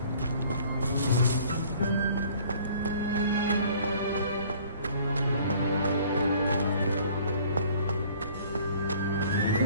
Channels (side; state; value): both; inverted; correlation -0.53